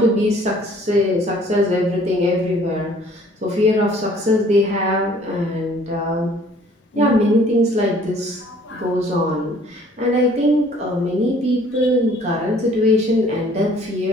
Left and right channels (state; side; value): normal; both; correlation 0.56